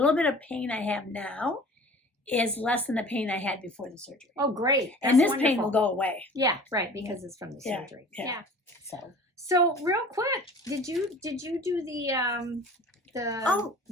bit of pain I have now is less than the pain I had before the surgery. Oh, great. And this That's pain will wonderful. go away. Yeah, right, because it's from the Yeah, surgery. yeah. So real quick, did you do the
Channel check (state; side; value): normal; both; correlation 0.44